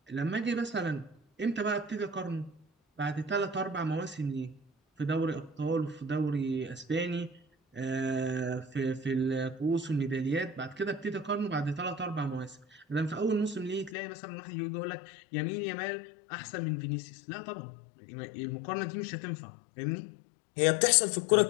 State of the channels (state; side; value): drops out; right; at 14.0 s